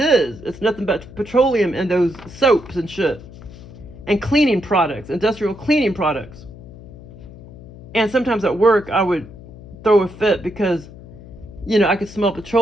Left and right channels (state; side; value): noise; left; hum, 17 dB below the sound